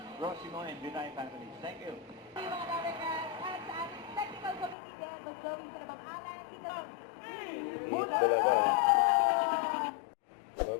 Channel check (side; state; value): right; drops out; at 4.8 s